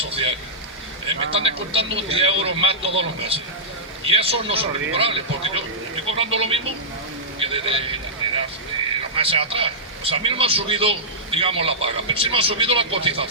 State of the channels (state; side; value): normal; both; correlation -0.13